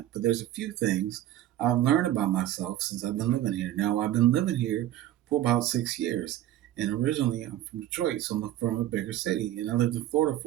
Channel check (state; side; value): quieter; left; 13.2 dB